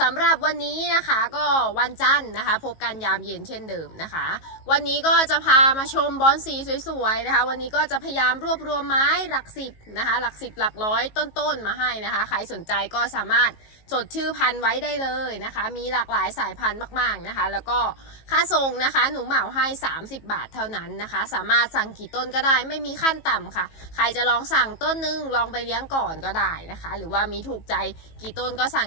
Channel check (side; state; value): right; late; 18 ms